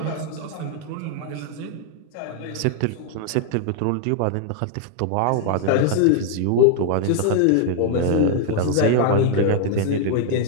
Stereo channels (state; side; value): different; both; correlation 0.00